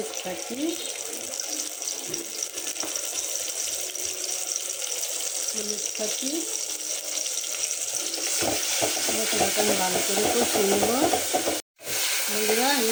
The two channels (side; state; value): both; identical; correlation 1.00